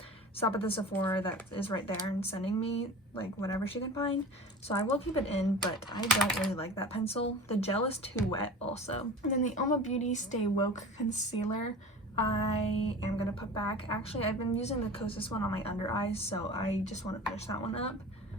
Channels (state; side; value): normal; both; correlation 0.37